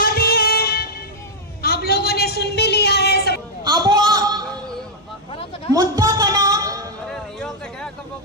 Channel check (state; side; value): normal; both; correlation -0.03